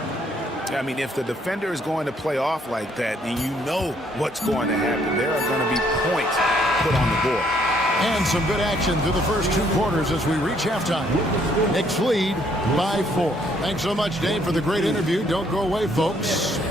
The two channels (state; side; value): normal; both; correlation 0.67